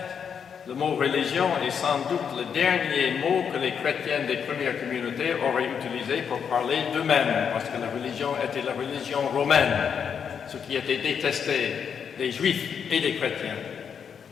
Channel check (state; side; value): quieter; right; 7.2 dB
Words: le mot religion est sans doute le dernier mot que les chrétiens des premières communautés auraient utilisé pour parler d'eux-mêmes, parce que la religion était la religion romaine, ce qui était détesté des juifs et des chrétiens.